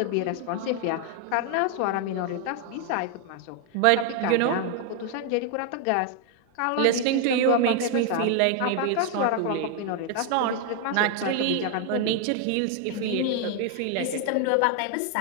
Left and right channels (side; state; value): both; different; correlation 0.00